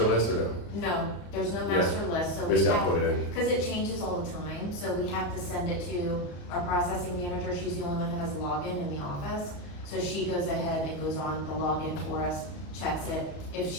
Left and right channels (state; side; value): late; right; 34 ms